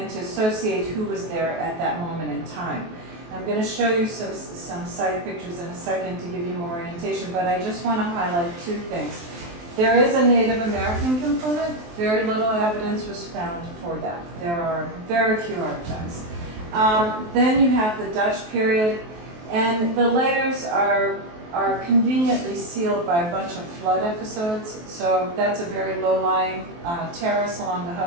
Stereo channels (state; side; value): late; left; 23 ms